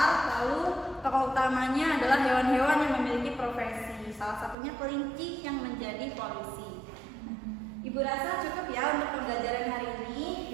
lalu tokoh utamanya adalah hewan-hewan yang memiliki profesi. Salah satunya kelinci yang menjadi polisi. Ibu rasa cukup ya untuk pembelajaran hari ini.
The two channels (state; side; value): drops out; left; at 4.5 s